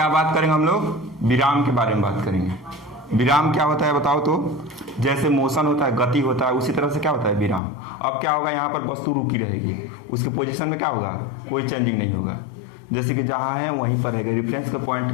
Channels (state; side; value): drops out; right; at 7.6 s